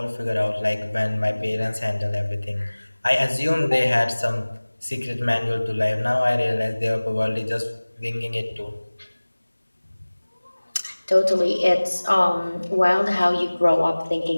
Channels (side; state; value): both; inverted; correlation -1.00